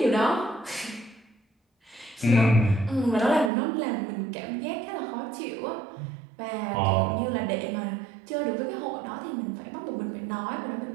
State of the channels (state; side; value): drops out; left; at 3.5 s